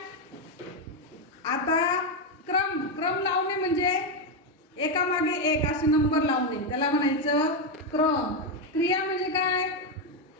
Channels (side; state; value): both; normal; correlation 0.06